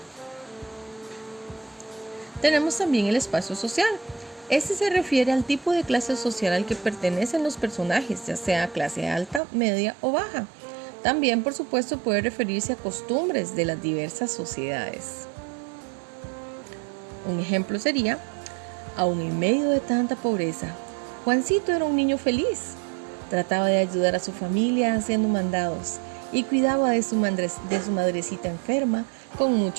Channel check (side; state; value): left; drops out; at 9.4 s